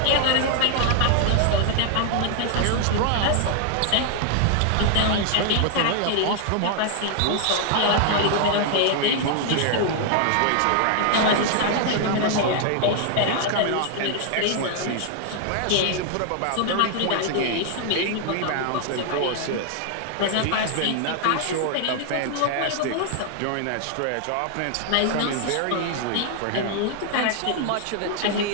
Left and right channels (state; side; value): different; both; correlation 0.00